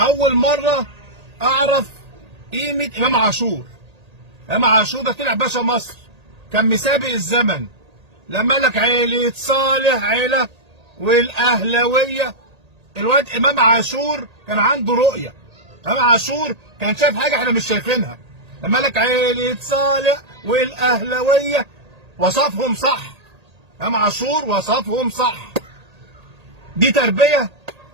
مرة أعرف قيمة إمام عاشور. إمام عاشور ده طلع باشا مصر، كان مسابق الزمن لما لك عيلة صالح عيلة والأهلوية. الواد إمام عاشور كان عنده رؤية. إمام عاشور كان شايف حاجة إحنا مش شايفينها. لما لك عيلة صالح والأهلوية وصفهم صح. إمام عاشور وصفهم صح. دي تربية؟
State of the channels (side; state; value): left; late; 1.8 ms